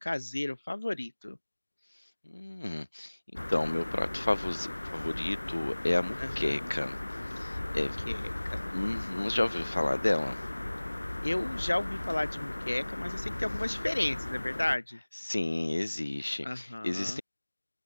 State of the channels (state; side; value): inverted; both; correlation -1.00